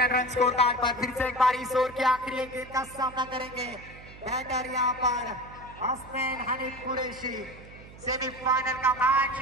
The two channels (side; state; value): right; noise; hum, 18 dB below the sound